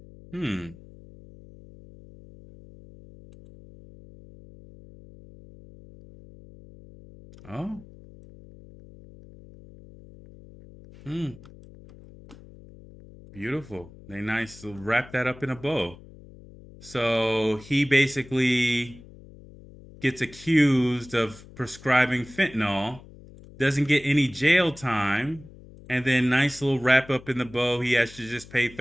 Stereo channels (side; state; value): left; noise; hum, 20 dB below the sound